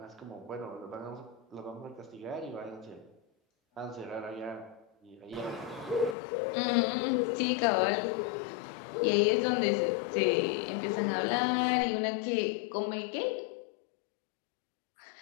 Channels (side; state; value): right; drops out; at 6.2 s